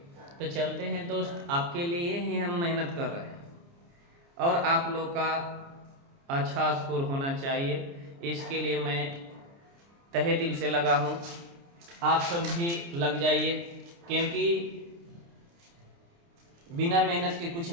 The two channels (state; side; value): late; left; 29 ms